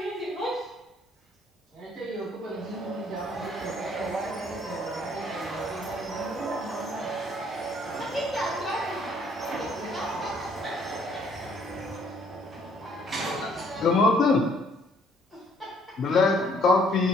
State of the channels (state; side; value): normal; both; correlation 0.63